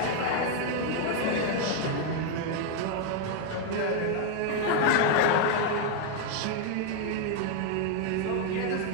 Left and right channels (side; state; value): both; different; correlation 0.01